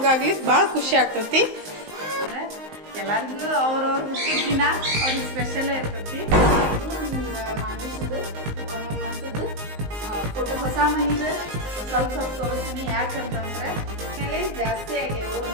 ಭಾಳ ಖುಷಿ ಆಗ್ತೈತಿ. ಅಂದ್ರೆ ಎಲ್ಲರಿಗೂ ಅವ್ರವ್ರ ದಿನ ಅವ್ರಿಗೆ ಸ್ಪೆಷಲ್ ಇರ್ತೈತಿ. ಮಾನುಷದ್ದು ಒಂದೊಂದು ಮಂತದ್ದು ಫೋಟೋ ಹೊಸ ಮನಿದು ಸ್ವಲ್ಪ ಸ್ವಲ್ಪ ತೋರಿಸ್ತೀನಿ. ಯಾಕಂತಂದ್ರೆ ಮೇಲೆ ಜಾಸ್ತಿ ಆಗ್ಯಾವು.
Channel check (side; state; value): left; late; 19 ms